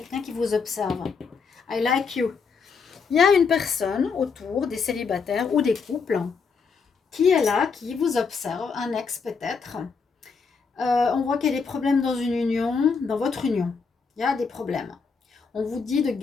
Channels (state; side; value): quieter; right; 5.3 dB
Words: qui vous observe. I like you. Il y a une personne autour des célibataires ou des couples qui est là, qui vous observe. Un ex peut-être. On voit qu'il y a des problèmes dans une union, dans votre union. Il y a des problèmes. On vous dit de